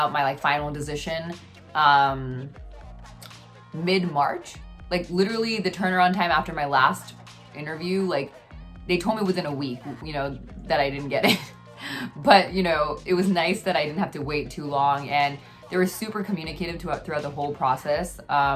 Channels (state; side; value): identical; both; correlation 1.00